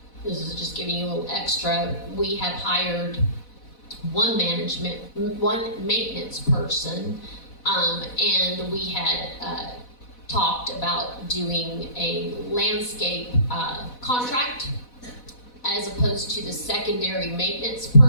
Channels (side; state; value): right; late; 4.1 ms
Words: this is just giving you a little extra, we have hired one maintenance person, and we had talked about doing a landscape contract as opposed to the secondary maintenance